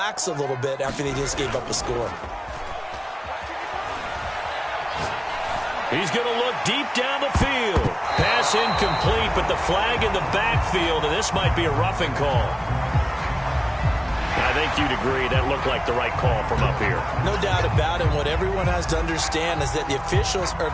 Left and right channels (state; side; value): identical; both; correlation 1.00